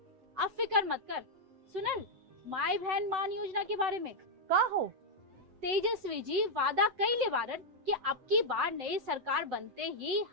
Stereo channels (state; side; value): late; left; 7.9 ms